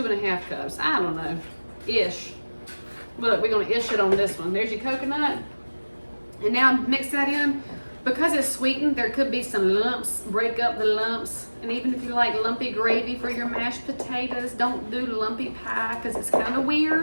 cups. I don't know. Ish. Look, we're gonna ish it on this one. There's your coconut. And now mix that in. Because it's sweetened, there could be some lumps. Break up the lumps. And even if you like lumpy gravy for your mashed potatoes, don't do lumpy pie because it's kind of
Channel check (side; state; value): both; inverted; correlation -1.00